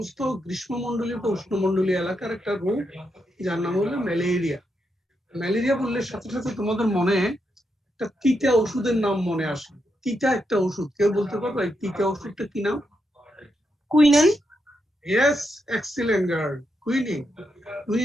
গ্রীষ্মমন্ডলীয় বা উষ্ণমন্ডলীয় এলাকার একটা রোগ যার নাম হলো ম্যালেরিয়া। ম্যালেরিয়া বললে সাথে সাথে তোমাদের মনে একটা তিতা ওষুধের নাম মনে আসে। তিতা একটা ওষুধ, কেউ বলতে পারবে এই তিতা ওষুধটা কি নাম? Quinine. Yes, excellent girl, quinine.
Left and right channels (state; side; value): normal; both; correlation 0.83